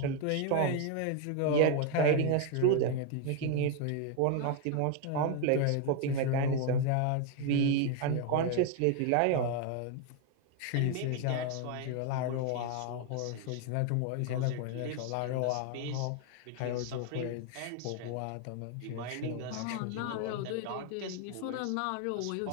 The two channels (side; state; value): both; different; correlation 0.01